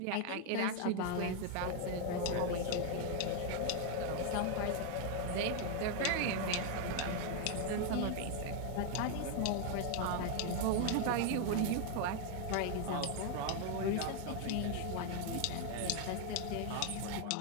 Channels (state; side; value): different; both; correlation 0.00